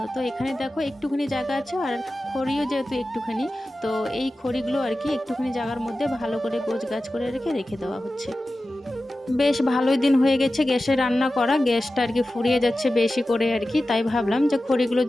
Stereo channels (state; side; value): normal; both; correlation 0.94